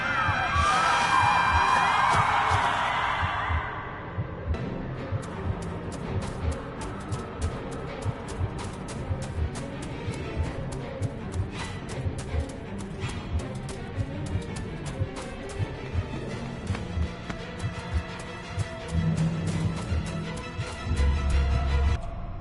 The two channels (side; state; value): both; identical; correlation 1.00